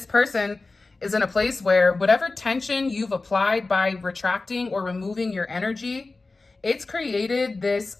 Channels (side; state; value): right; quieter; 3.5 dB